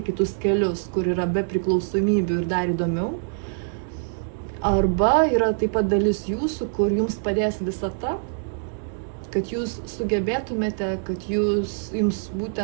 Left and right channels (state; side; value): silent; left; digital silence